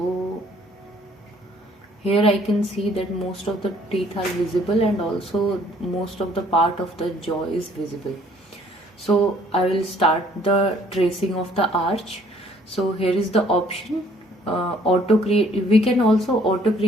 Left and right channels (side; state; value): both; normal; correlation 0.60